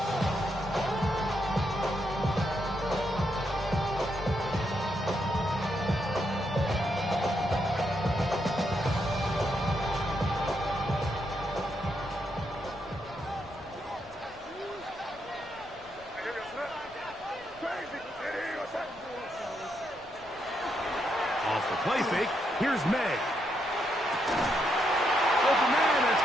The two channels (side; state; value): left; noise; rumble, 24 dB below the sound